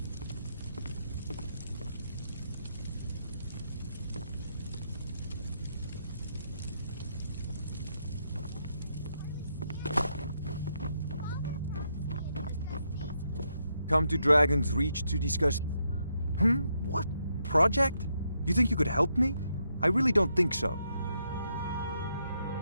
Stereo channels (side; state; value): both; inverted; correlation -0.79